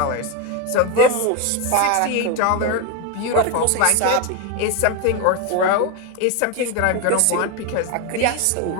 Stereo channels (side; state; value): both; different; correlation 0.02